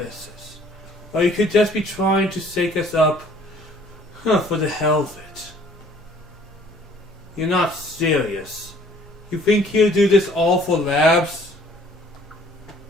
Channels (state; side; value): normal; both; correlation 0.56